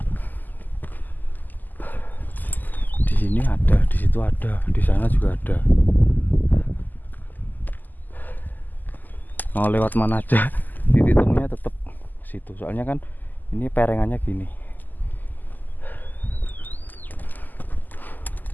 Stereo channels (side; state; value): right; late; 0.085 ms